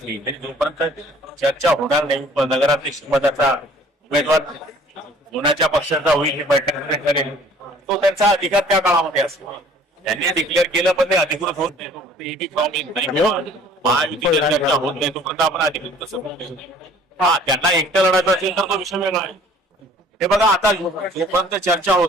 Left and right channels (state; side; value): normal; both; correlation 0.53